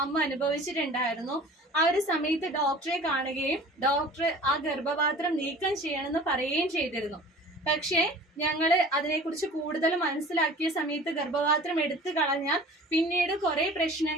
അമ്മ അനുഭവിച്ചിട്ടുണ്ടായിരുന്നു. ആ ഒരു സമയത്ത് ഡോക്ടറെ കാണുകയും ഡോക്ടർ ആ ഗർഭപാത്രം നീക്കം ചെയ്യണമെന്ന് പറയുകയും ചെയ്തിരുന്നു. പക്ഷേ ഞങ്ങള് അതിനെക്കുറിച്ച് കൂടുതൽ മനസ്സിലാക്കിയ സമയത്ത് ഗർഭപാത്രം എടുത്തു കളഞ്ഞാൽ പിന്നീട് കുറെ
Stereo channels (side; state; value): both; normal; correlation 0.44